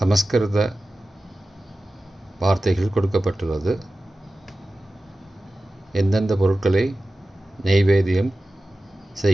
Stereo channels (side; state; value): both; normal; correlation 0.95